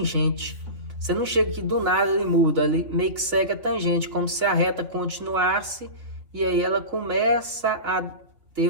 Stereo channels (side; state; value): left; late; 3.5 ms